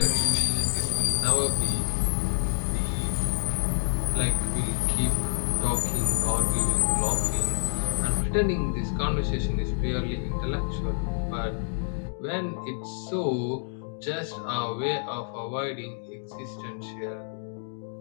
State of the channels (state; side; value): silent; right; digital silence